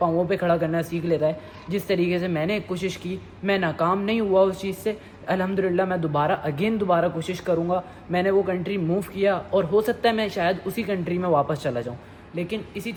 पे खड़ा करना सीख लेता है। जिस तरीके से मैंने कोशिश की, मैं नाकाम नहीं हुआ उस चीज़ से, अल्हम्दुलिल्लाह मैं दोबारा कोशिश करूँगा। मैंने वो कंट्री मूव किया, और हो सकता है मैं शायद उसी कंट्री में वापस चला जाऊँ, लेकिन इसी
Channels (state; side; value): identical; both; correlation 1.00